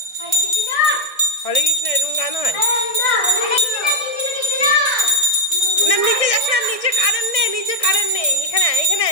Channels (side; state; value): right; late; 1.6 ms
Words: হরে কৃষ্ণ এরকম গান হয় না? নিচে যাস না, নিচে কারেন্ট নেই, নিচে কারেন্ট নেই। এখানে এখানে